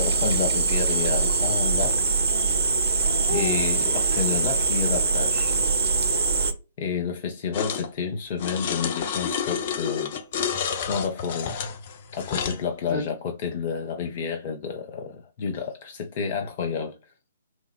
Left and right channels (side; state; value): both; inverted; correlation -0.54